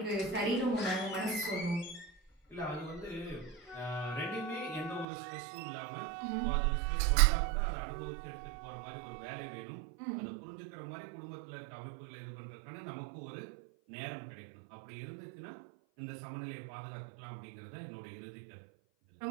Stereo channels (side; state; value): left; drops out; at 5.1 s